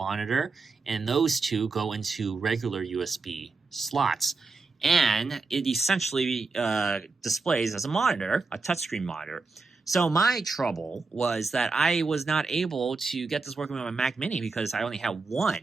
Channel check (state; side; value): quieter; left; 4.0 dB